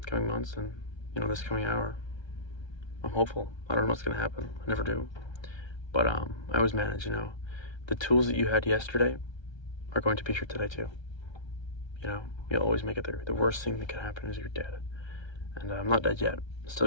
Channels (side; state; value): right; late; 1.3 ms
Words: coming months and this coming hour. I'm hopeful. I don't know what's gonna happen. I never do. But I always manage, The tools that you had yesterday are going to be here today too. You'll always make it through. The worst thing that could happen is you're dead. And I'm not dead yet.